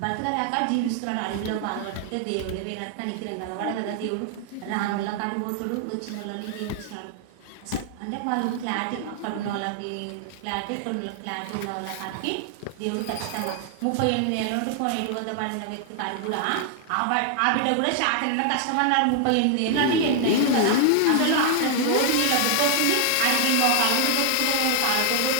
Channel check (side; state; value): both; different; correlation 0.00